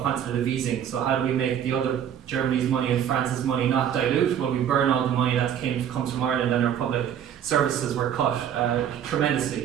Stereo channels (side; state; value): left; quieter; 9.4 dB